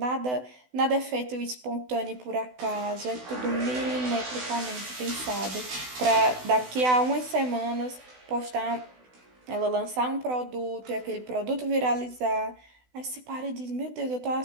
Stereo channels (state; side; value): late; left; 16 ms